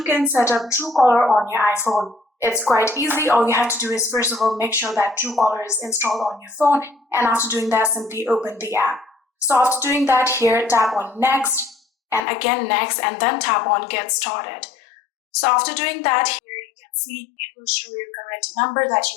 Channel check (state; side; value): drops out; right; at 12.2 s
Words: can set up Truecaller on your iPhone. It's quite easy. All you have to do is first of all make sure that Truecaller is installed on your phone, and after doing that simply open the app. So after doing that, here tap on next and again next and then tap on get started. So after doing that, here you can see it will show your correct number that